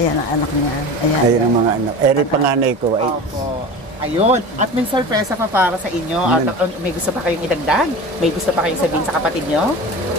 ang anak niya. Ayan ang mga anak. Eri panganay ko. Opo. Ayun. At may sorpresa pa para sa inyo. At may gusto pa kayong idagdag? May gusto pa kayong sabihin sa kapatid nyo?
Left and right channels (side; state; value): both; normal; correlation 0.33